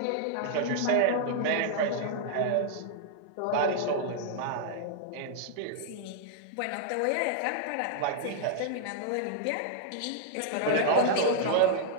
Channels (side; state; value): both; different; correlation -0.01